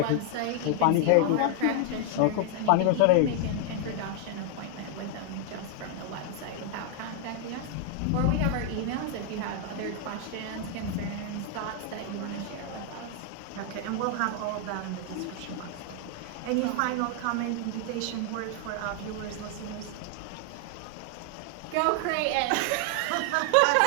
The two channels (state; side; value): different; both; correlation 0.00